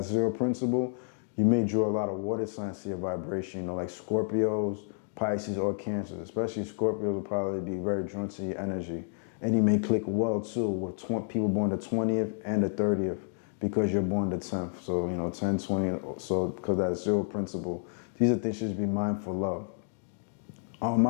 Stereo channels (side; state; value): right; silent; digital silence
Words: zero principle, you may draw a lot of water signs to your vibration, you know, like Scorpios, Pisces, or Cancers. Especially Scorpios will probably be very drawn to your energy. And you may click well too with people born the 20th and the 30th because you're born the 10th. So, you know, 10, 20, so because that zero principle. These are things you should be mindful of. I